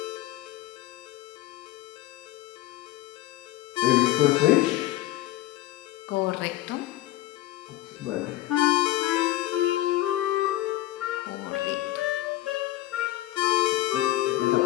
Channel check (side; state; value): right; quieter; 15.8 dB